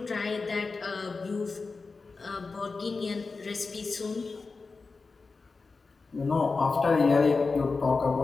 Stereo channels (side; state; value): right; quieter; 4.2 dB